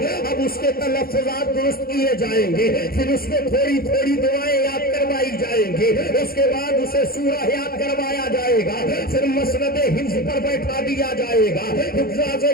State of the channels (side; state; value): right; late; 0.44 ms